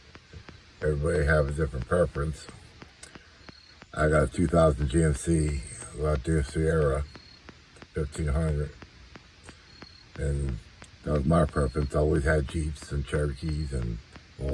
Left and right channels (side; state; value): both; identical; correlation 1.00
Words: Everybody have a different preference. I got a 2000 GMC Sierra 1500, and that was my preference. I always had Jeeps and Cherokees and